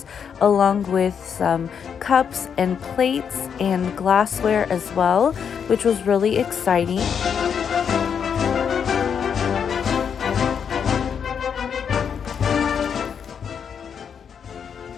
along with some cups and plates and glassware as well, which was really exciting.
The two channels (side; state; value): right; quieter; 7.3 dB